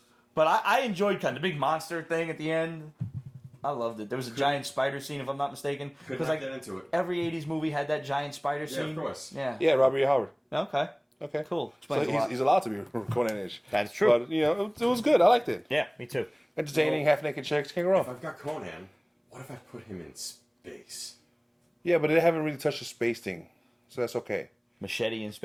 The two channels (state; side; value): identical; both; correlation 1.00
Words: But I enjoyed kind of the big monster thing at the end. I loved it. There was a giant spider scene, if I'm not mistaken. Could Because not like get into it. every '80s movie had that giant spider Yeah, scene. of course. Yeah. Yeah, Robert E. Howard. Okay. Okay. Cool. So Explains a lot. he's allowed to be Conan-ish. That's true. But, it was good. I liked it. Yeah, me too. Entertaining, half-naked chicks. Can't go If wrong. I've got Conan, what if I put him in space? Yeah, but they haven't really touched the space thing. So that's okay. Machete in